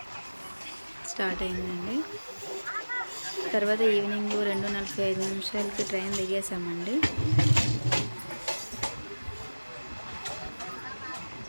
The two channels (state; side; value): inverted; both; correlation -1.00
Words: స్టార్ట్ అయిందండి. తర్వాత ఈవినింగ్ 2:45 ట్రైన్ దిగేసామండి.